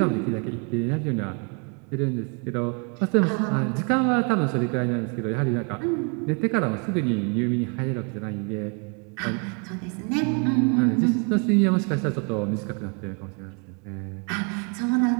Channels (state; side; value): quieter; left; 36.5 dB